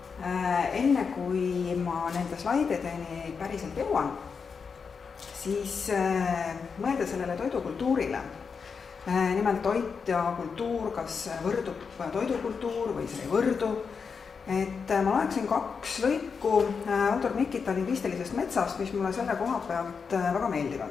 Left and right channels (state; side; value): quieter; right; 5.6 dB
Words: kui ma nende slaidideni päriselt jõuan, siis mõelda sellele toidukultuurile. Nimelt toit ja kultuur, kas võrdub toidukultuur või see ei võrdu. Et ma loeksin 2 lõiku autor Mikita lingvistilisest metsast, mis mulle selle koha pealt väga